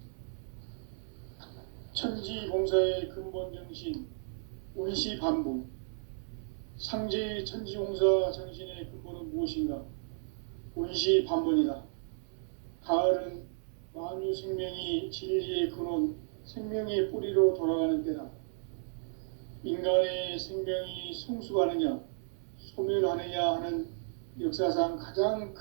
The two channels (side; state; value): left; silent; digital silence